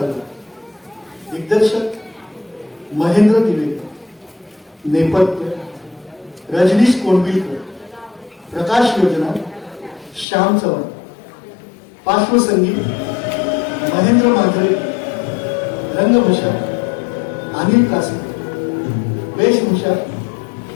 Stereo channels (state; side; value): drops out; right; at 10.2 s